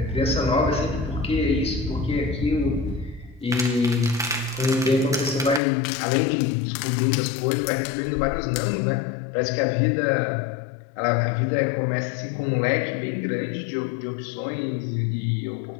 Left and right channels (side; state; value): right; drops out; at 5.6 s